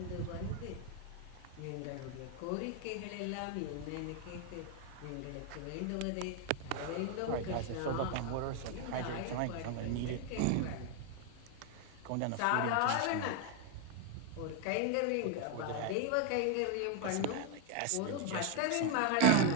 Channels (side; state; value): both; different; correlation 0.01